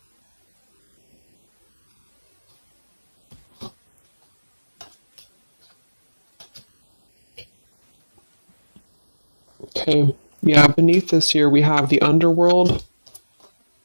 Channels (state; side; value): inverted; both; correlation -1.00